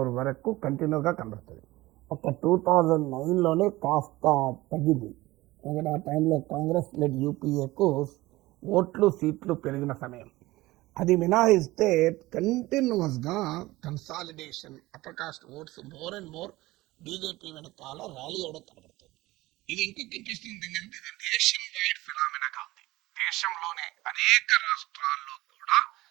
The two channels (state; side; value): quieter; left; 18.9 dB